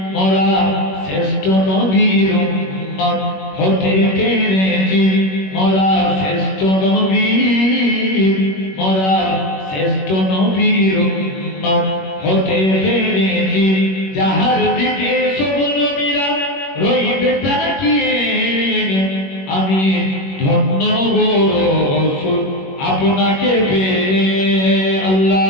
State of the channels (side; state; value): right; late; 21 ms